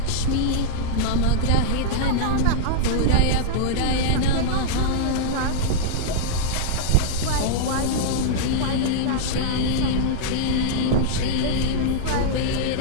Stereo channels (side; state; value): both; different; correlation -0.02